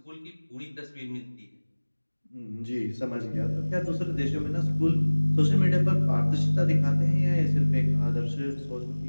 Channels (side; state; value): both; inverted; correlation -1.00